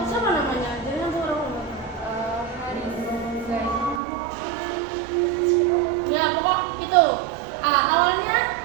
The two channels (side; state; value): left; drops out; at 4.0 s